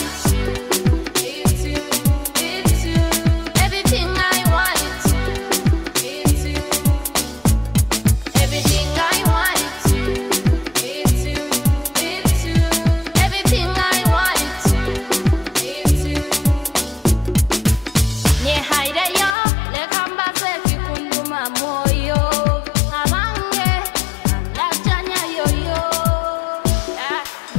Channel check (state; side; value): drops out; right; at 19.4 s